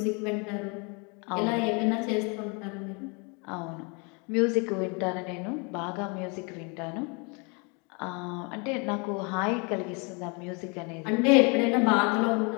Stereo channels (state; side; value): quieter; right; 32.4 dB